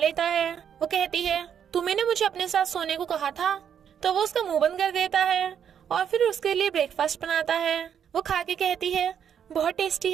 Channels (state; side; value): quieter; left; 8.5 dB